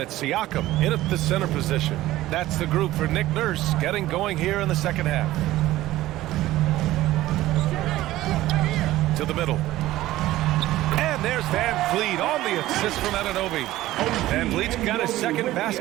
Siakam in at the center position. That's the group for Nick Nurse getting going here in the second half. To the middle. And there's Van Vliet on the assist from Anunoby. Van Vliet's got his second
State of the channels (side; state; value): left; quieter; 15.8 dB